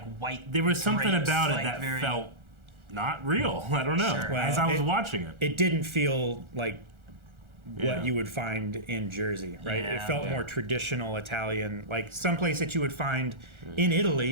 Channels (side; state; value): left; late; 1.4 ms